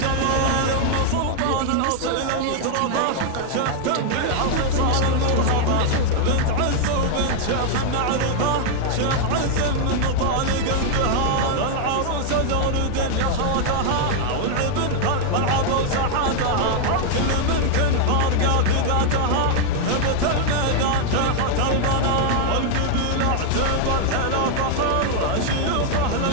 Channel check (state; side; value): different; both; correlation 0.00